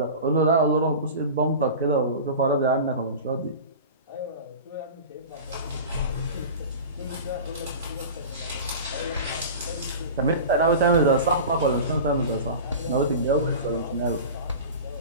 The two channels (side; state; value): both; inverted; correlation -0.33